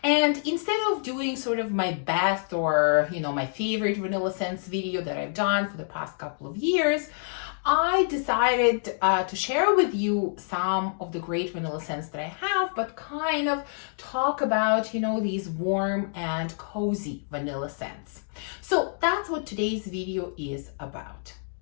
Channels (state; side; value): silent; right; digital silence